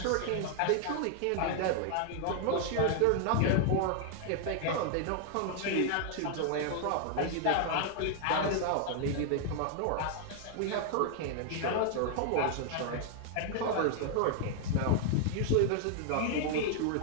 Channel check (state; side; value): different; both; correlation 0.00